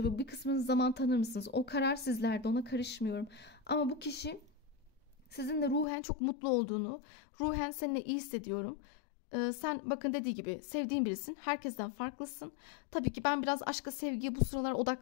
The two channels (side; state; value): right; drops out; at 5.9 s